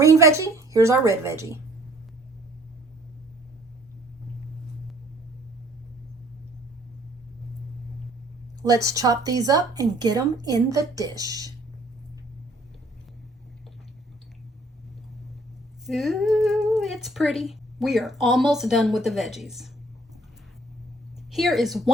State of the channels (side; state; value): both; normal; correlation 0.59